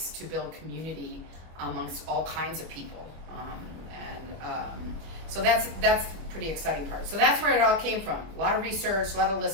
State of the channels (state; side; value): late; left; 26 ms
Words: to build community amongst all kinds of people. So that's the pretty exciting part. So that's where it all came from. A lot of research, a lot of